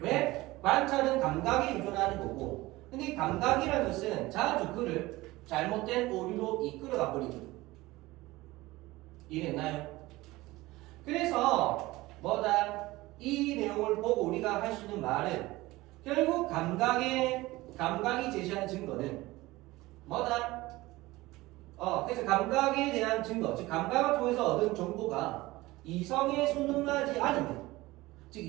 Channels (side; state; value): left; quieter; 19.4 dB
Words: 관찰은 감각에 의존하는 거고 근데 이 감각이라는 것은 자주 그를 잘못된 오류로 이끌어가 버리거든. 이해했나요? 그래서 뭐다? 이 내용을 보고 우리가 할 수 있는 말은 결국 감각이 제시하는 증거는 뭐다? 그래서 감각에 대한 증거, 즉 감각을 통해서 얻은 정보가 이성에 순응하지 않으면, 즉